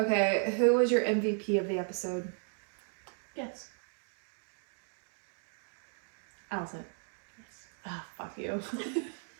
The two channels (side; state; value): left; silent; 54 dB below the other